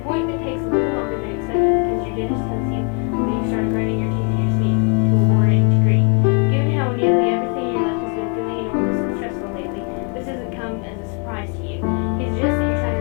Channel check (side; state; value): right; quieter; 36.2 dB